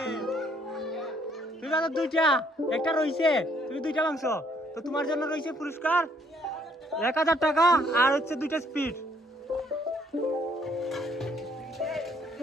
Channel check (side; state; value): both; normal; correlation 0.66